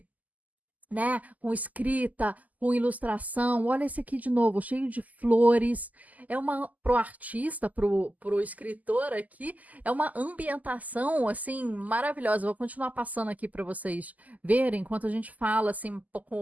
né? Com escrita, com ilustração. Olha esse aqui de novo, cheio de flores. É uma pro artista, pro escritor aqui, é uma ambientação assim maravilhosa. Vou continuar passando aqui para vocês verem enquanto a gente fala assim um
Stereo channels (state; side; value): late; left; 0.078 ms